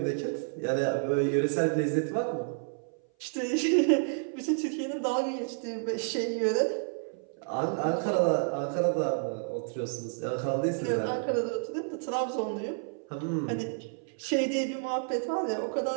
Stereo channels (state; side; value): silent; left; 56 dB below the other